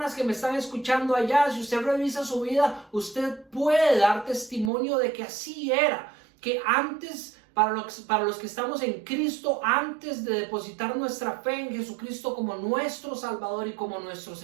que me están escuchando allá, si usted revisa su vida, usted puede dar testimonio de que así era, que antes, para los que estamos en Cristo, antes de depositar nuestra fe en Jesucristo como nuestro Salvador y como nuestro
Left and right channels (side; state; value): left; drops out; at 4.7 s